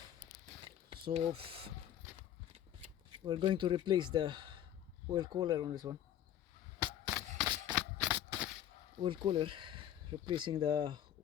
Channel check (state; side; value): quieter; right; 11.1 dB